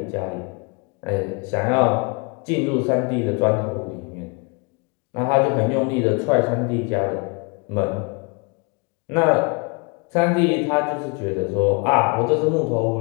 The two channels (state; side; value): quieter; right; 31.5 dB